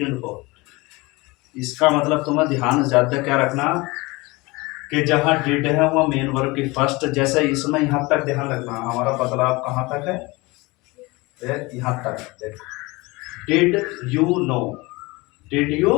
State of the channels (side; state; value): right; quieter; 23.5 dB